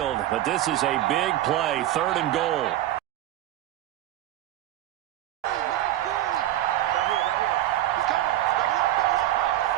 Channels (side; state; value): left; quieter; 13.8 dB